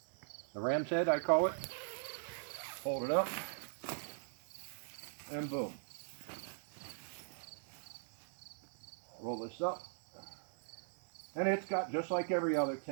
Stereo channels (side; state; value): left; silent; digital silence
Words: The ram's head, I call it. Hold it up, and boom. Roll this up. And it's got, just like every other